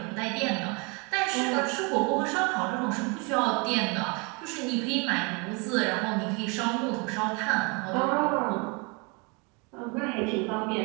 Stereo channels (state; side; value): quieter; left; 30.9 dB